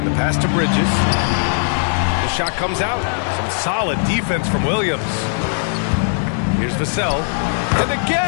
the pass to Bridges. The shot comes out. Some solid defense from Williams. Here's Vassell. And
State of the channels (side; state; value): right; silent; 67 dB below the other